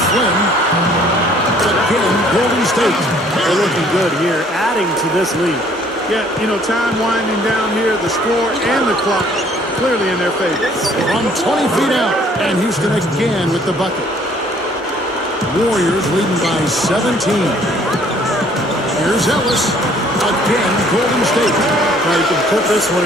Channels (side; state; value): both; normal; correlation 0.59